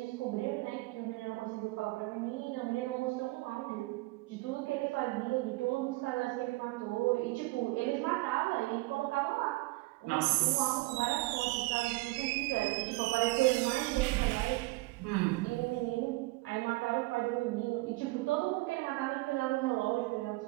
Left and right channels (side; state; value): left; quieter; 22.2 dB